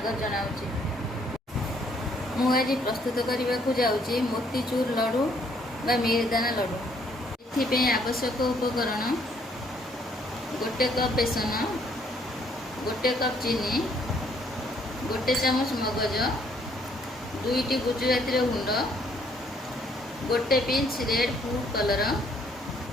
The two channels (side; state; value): both; normal; correlation 0.66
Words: जनाऊँगी। मु आज प्रस्तुत करने को जाऊँगी मोतीचूर लड्डू बा मिहिदाना लड्डू। एथि आवश्यक उपकरण गोटे कप बेसन, गोटे कप चीनी, गोटे चामच मगज, 2टी गुजराती गुंड, गोटे पिंच रेड फूड कलर,